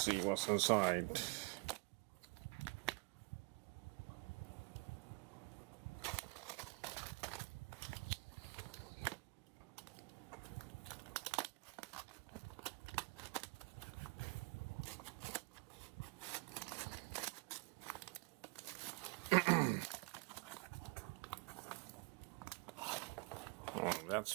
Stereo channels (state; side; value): quieter; left; 29.0 dB